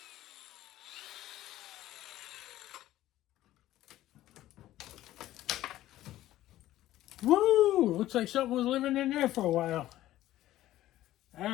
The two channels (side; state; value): right; quieter; 14.5 dB